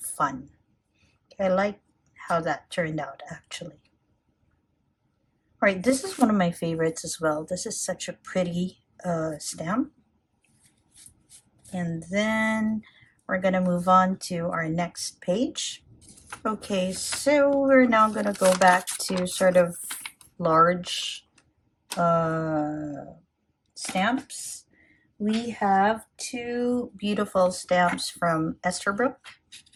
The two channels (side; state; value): both; identical; correlation 1.00